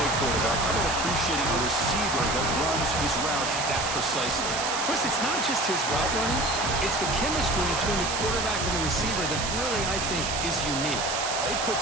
quarterback. How about appreciating a receiver that runs his routes that precisely? Chris, it's not just his route running. It's the chemistry between the quarterback and the receiver that really, I think, is unique. They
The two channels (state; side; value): noise; right; hiss, 2 dB below the sound